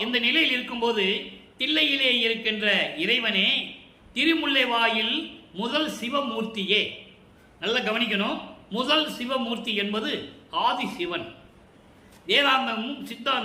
இந்த நிலையில் இருக்கும்போது தில்லையிலே இருக்கின்ற இறைவனே, திருமுல்லை வாயில் முதல் சிவமூர்த்தியே. நல்லா கவனிக்கணும். முதல் சிவமூர்த்தி என்பது ஆதி சிவன். வேதாந்தமும்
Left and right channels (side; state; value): both; identical; correlation 1.00